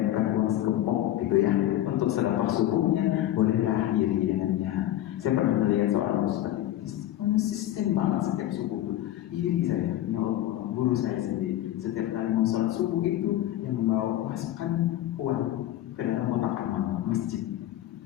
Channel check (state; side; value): quieter; right; 13.4 dB